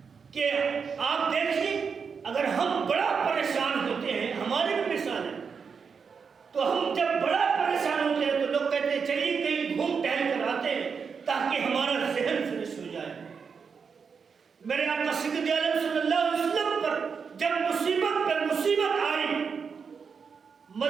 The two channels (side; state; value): left; quieter; 5.9 dB